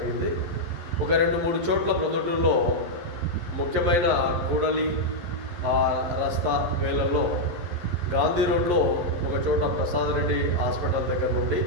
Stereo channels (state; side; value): late; left; 11 ms